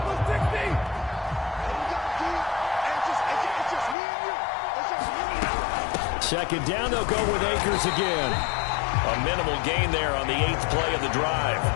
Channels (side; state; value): right; drops out; at 4.0 s